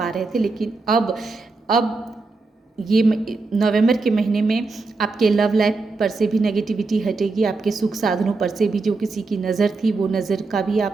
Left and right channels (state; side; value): quieter; left; 3.8 dB